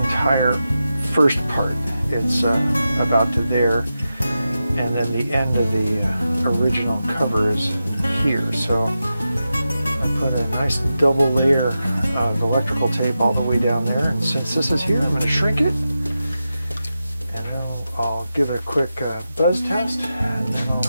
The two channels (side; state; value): both; inverted; correlation -0.90